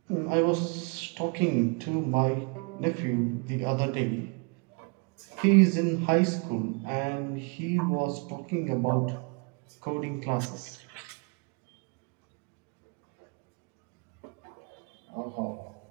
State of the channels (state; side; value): quieter; left; 33.6 dB